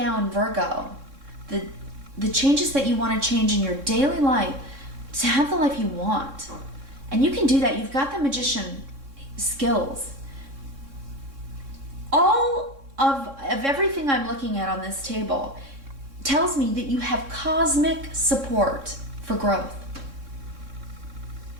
in Virgo, the changes that you want to change in your daily life to have the life you want. And you can do that. You've got the Magician skills. All of everything I'm looking at on this table tells me that you have cosmic support for growth.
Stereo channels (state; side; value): late; left; 3.6 ms